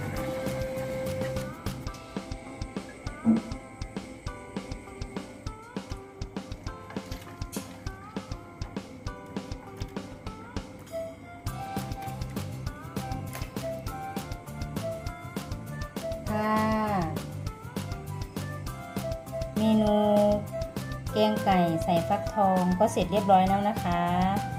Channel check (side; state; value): both; identical; correlation 1.00